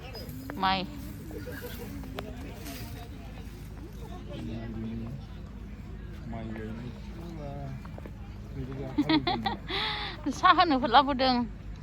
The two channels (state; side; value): identical; both; correlation 1.00